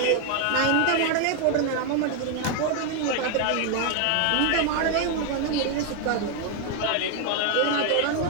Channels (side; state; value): both; different; correlation 0.01